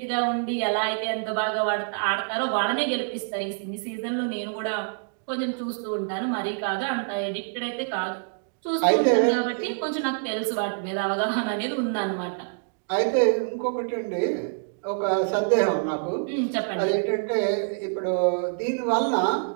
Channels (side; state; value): left; silent; digital silence